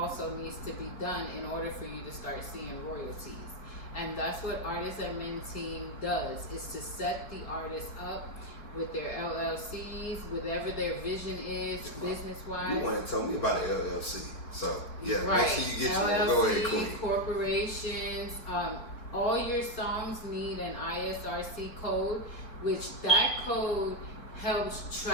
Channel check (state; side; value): late; right; 4.0 ms